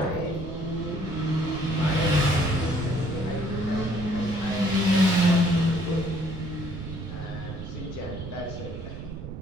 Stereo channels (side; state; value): right; noise; rumble, 9 dB below the sound